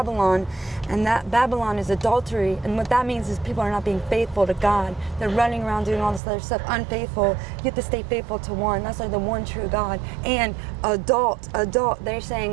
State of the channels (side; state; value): left; drops out; at 6.2 s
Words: and that Babylon is adultery. And what that means is people are not being faithful to God. They're running around doing all this other stuff, unfaithful. You have to stay faithful to one. That's like the one true God. And adult. They're